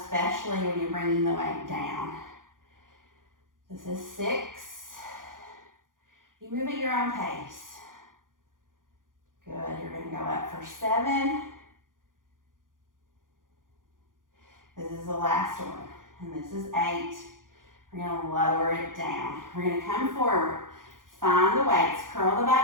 when you're bringing the weight down. This is 6. You move at your own pace. Good, you're gonna go up for 7. This is the last one, and this is 8. We're gonna lower it down. We're gonna come forward, find the weights, curl the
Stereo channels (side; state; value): left; late; 0.90 ms